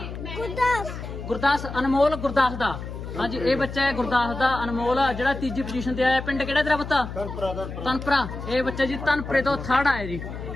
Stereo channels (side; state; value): left; noise; hum, 9 dB below the sound